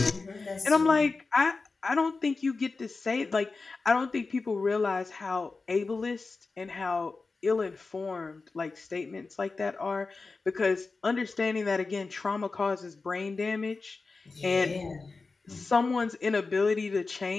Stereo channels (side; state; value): right; quieter; 4.0 dB